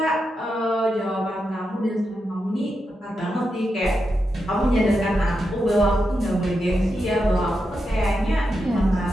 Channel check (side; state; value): both; normal; correlation 0.86